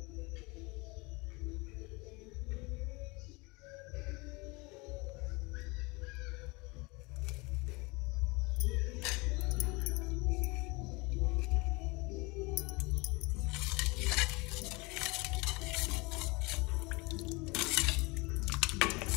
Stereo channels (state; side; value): quieter; right; 26.0 dB